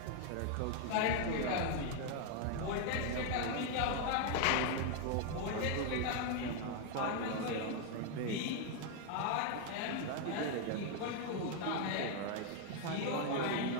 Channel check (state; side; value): different; both; correlation 0.01